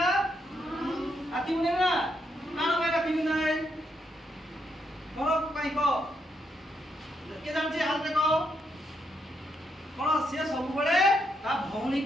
राखी पिंधाय ना कान में राखी पिंधाय कोन पाई को के जानछि हाल देखो कोन से सब बळे ता भौणी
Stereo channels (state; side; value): normal; both; correlation 0.78